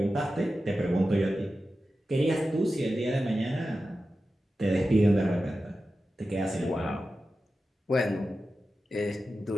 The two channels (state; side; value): normal; both; correlation 0.93